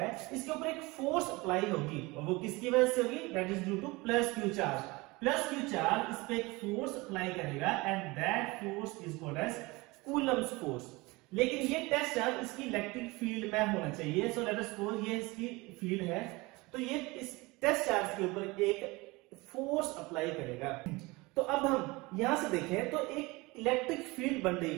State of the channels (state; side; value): quieter; left; 23.4 dB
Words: इसके ऊपर एक फोर्स अप्लाई होगी, और वो किसकी वजह से होगी? That is due to plus Q charge. Plus Q charge इस पे एक फोर्स अप्लाई करेगा and that force is called as Coulomb's force. लेकिन ये टेस्ट चार्ज इसकी इलेक्ट्रिक फील्ड में होना चाहिए। सो लेट अस सपोज ये इसकी फील्ड है, तो ये इस टेस्ट चार्ज के ऊपर एक फोर्स अप्लाई करेगा। तो अब हम यहां से देखें तो एक इलेक्ट्रिक फील्ड बन रही